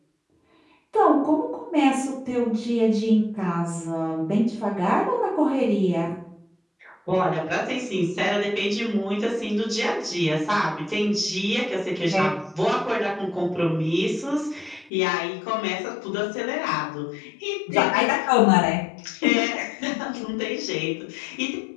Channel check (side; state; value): right; drops out; at 14.9 s